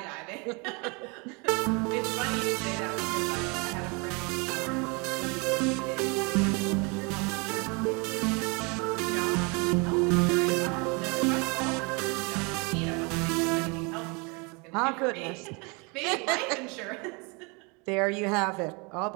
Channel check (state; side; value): quieter; left; 30.5 dB